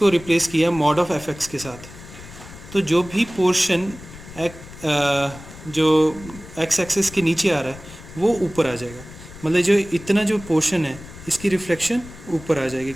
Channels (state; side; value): noise; left; rumble, 17 dB below the sound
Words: रिप्लेस किया मॉड ऑफ fx के साथ। तो जो भी पोर्शन जो x एक्सिस के नीचे आ रहा है वो ऊपर आ जाएगा, मतलब जो इतना जो पोर्शन है इसकी रिफ्लेक्शन ऊपर आ जाएगी